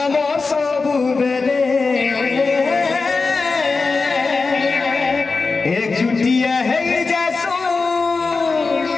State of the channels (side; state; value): right; quieter; 4.2 dB